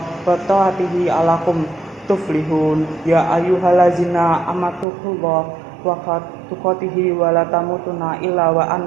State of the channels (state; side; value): drops out; left; at 4.9 s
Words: ta'atihi alakum tuflihun. Ya ayyuhallazina amatuqullah wa tuqatihi wa la tamutunna illa wa